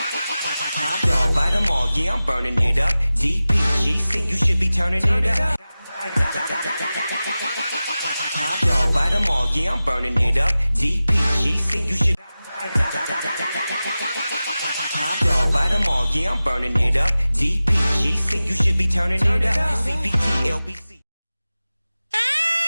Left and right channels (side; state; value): both; inverted; correlation -0.96